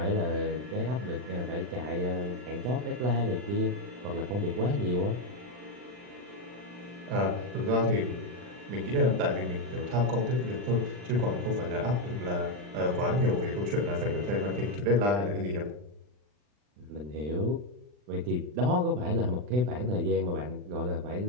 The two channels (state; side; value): late; left; 40 ms